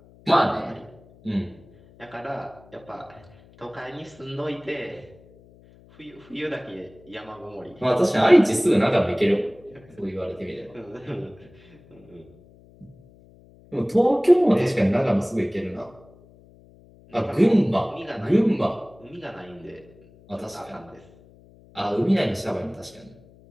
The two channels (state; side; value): noise; left; hum, 26 dB below the sound